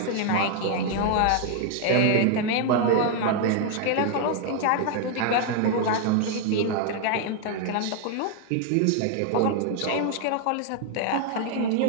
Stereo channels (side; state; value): both; different; correlation 0.00